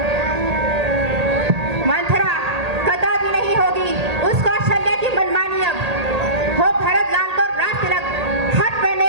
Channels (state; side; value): late; left; 1.8 ms